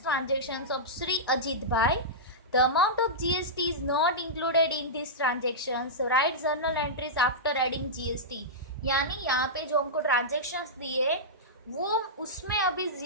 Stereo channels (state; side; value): normal; both; correlation -0.13